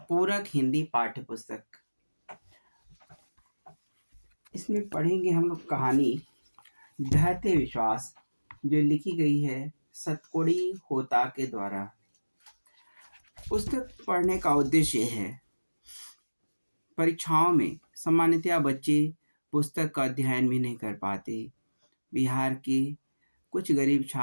पूरक हिंदी पाठ्य पुस्तक। इसमें पढ़ेंगे हम लोग कहानी धैर्य विश्वास, जो लिखी गई है सतकोड़ी होता के द्वारा। पुस्तक पढ़ने का उद्देश्य है, परीक्षाओं में सामान्यतया बच्चे पुस्तक का अध्ययन भी नहीं कर पाते। बिहार के कुछ गरीब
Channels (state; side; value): inverted; both; correlation -1.00